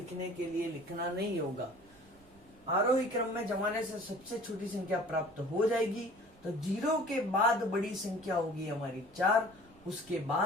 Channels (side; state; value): right; noise; rumble, 28 dB below the sound